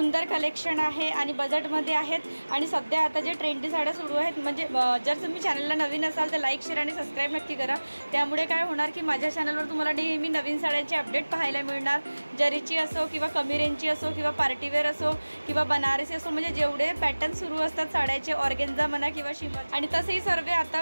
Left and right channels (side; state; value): both; inverted; correlation -1.00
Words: कलेक्शन आहे आणि बजेटमध्ये आहेत आणि सध्या आता जे ट्रेंडी साड्या सुरू आहेत, म्हणजे जर तुम्ही चॅनलला नवीन असाल तर लाईक शेअर आणि सबस्क्राईब नक्की करा। त्यामुळे काय होणार की माझ्या चॅनलवर तुम्हाला नेहमी नवीन साड्यांचे अपडेट पाहायला मिळणार। जरीची असो किंवा कमी रेंजची असो किंवा पार्टीवेअर असो किंवा बनारसी असो, म्हणजे जेवढे पॅटर्न सुरू असतात साड्याचे, ऑर्गेन्झा म्हणा किंवा शिमर, आणि तसेही सर्व आता